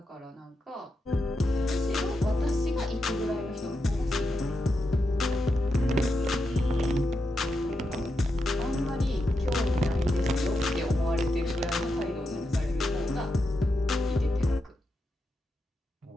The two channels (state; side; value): normal; both; correlation 0.86